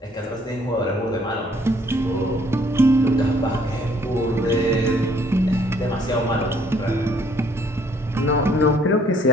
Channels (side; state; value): both; normal; correlation 0.63